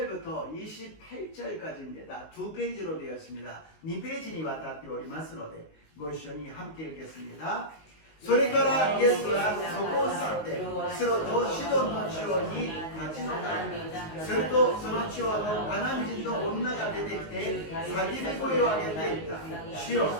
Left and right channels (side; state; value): right; late; 19 ms